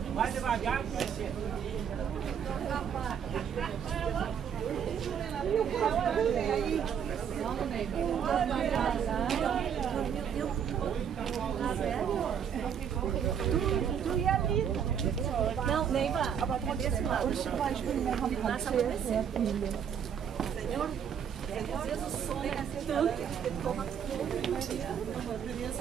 Vai devagar que vai ser. Não, Neiva. Senhor,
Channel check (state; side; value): quieter; left; 8.0 dB